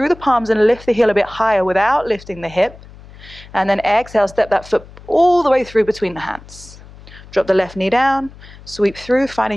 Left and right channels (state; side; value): noise; left; hum, 20 dB below the sound